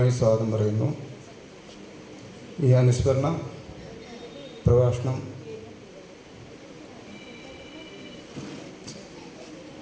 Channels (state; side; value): identical; both; correlation 1.00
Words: സ്വാഗതം പറയുന്നു. ഈ അനുസ്മരണ പ്രഭാഷണം